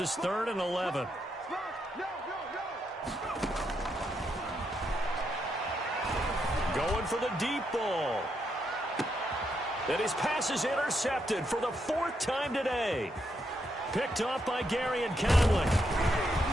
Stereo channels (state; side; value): normal; both; correlation 0.80